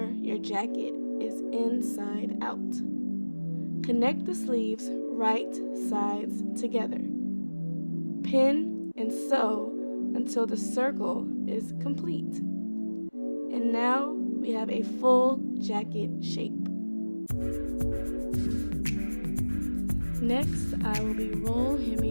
your jacket is inside out. Connect the sleeves right sides together. Pin and sew until the circle is complete. And now we have a full jacket shape. Next, I will be roll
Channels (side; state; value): both; inverted; correlation -1.00